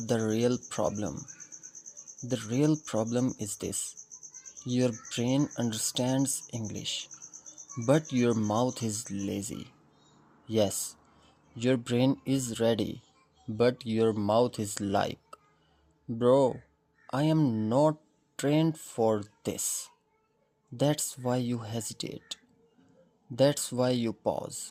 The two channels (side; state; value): both; identical; correlation 1.00